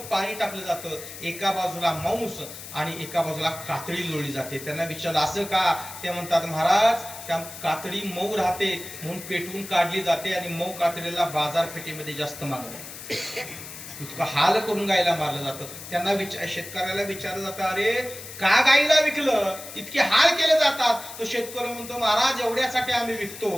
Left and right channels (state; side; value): noise; left; hiss, 12 dB below the sound